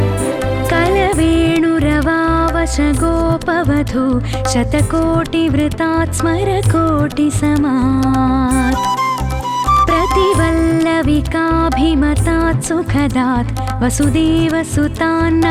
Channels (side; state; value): both; identical; correlation 1.00